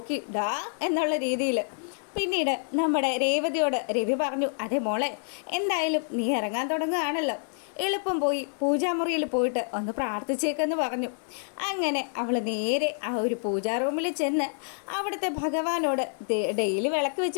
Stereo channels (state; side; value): silent; right; 57 dB below the other